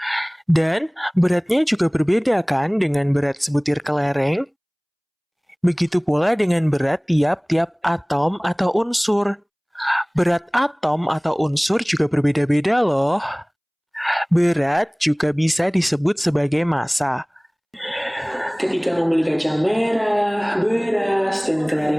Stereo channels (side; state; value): both; identical; correlation 1.00